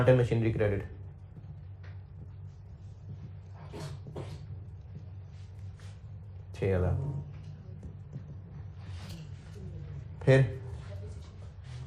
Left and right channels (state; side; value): identical; both; correlation 1.00